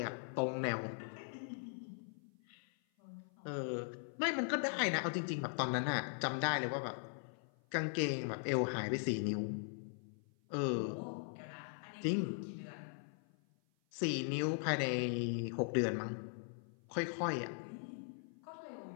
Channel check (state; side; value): silent; right; 51 dB below the other